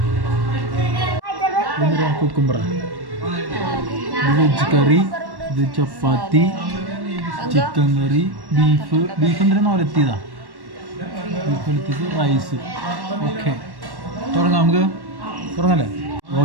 കുക്കുംബറ വെജ് കറി ഇത് ചപ്പാത്തി ചിക്കൻ കറി ബീഫ് എന്തിനാ ഒലത്തിയതാ ബീഫ് ഒലത്തിയത് റൈസ് ഓക്കെ തുടങ്ങാം നമുക്ക് തുടങ്ങല്ലേ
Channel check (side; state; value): left; late; 1.1 ms